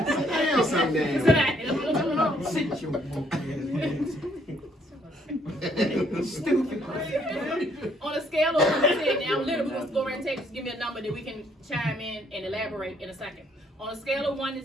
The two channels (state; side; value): normal; both; correlation 0.67